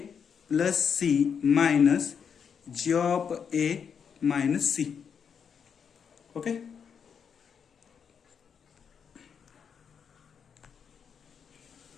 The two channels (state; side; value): quieter; right; 7.0 dB